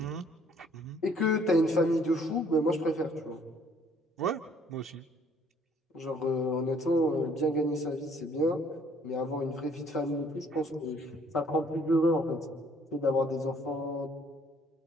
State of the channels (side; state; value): both; normal; correlation 0.61